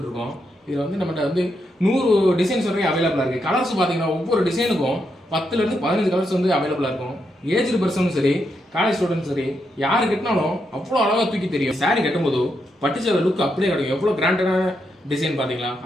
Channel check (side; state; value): both; normal; correlation 0.82